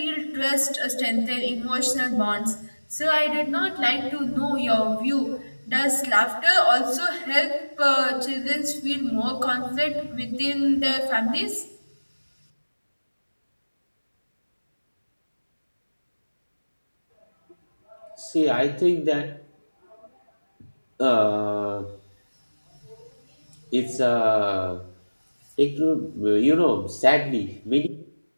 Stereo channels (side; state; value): both; inverted; correlation -1.00